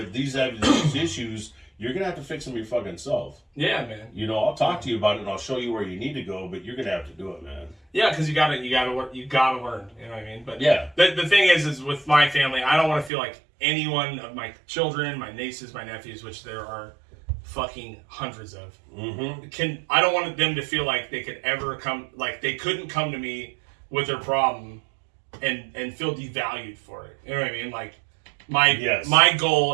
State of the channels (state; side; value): drops out; left; at 13.1 s